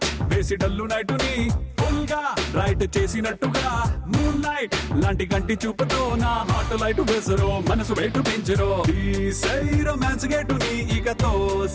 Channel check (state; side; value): identical; both; correlation 1.00